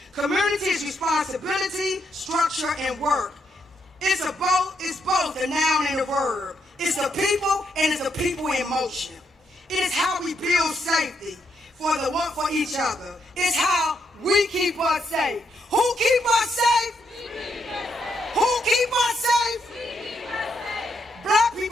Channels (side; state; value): both; normal; correlation 0.78